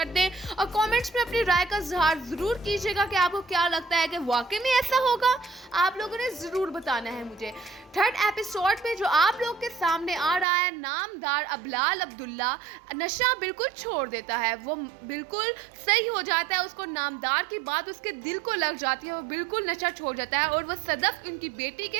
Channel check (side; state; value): left; drops out; at 10.5 s